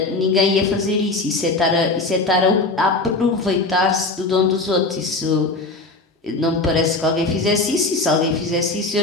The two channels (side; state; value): right; quieter; 3.3 dB